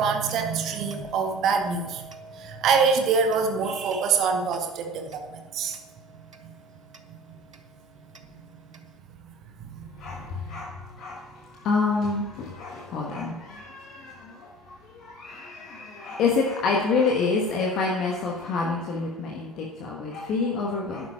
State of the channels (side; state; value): both; normal; correlation 0.41